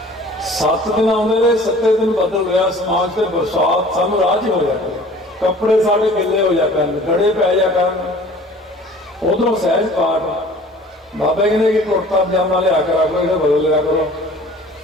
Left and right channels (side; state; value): both; normal; correlation 0.48